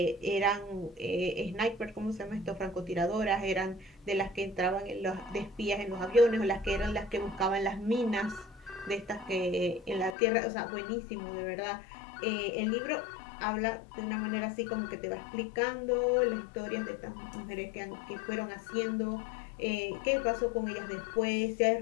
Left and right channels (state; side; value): drops out; right; at 10.2 s